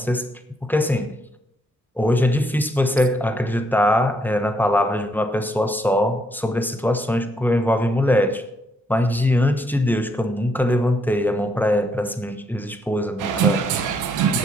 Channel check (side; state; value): both; normal; correlation 0.73